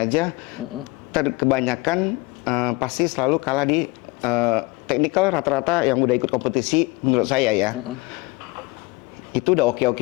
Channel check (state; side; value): quieter; right; 23.8 dB